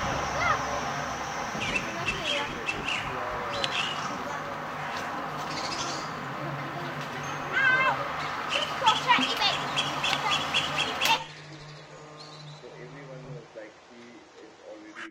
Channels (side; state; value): both; identical; correlation 1.00